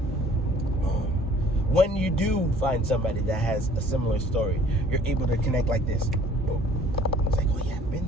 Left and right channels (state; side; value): normal; both; correlation 0.54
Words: When you do find somebody that has a similar story, you're able to connect like this. It's like, oh yeah, I've been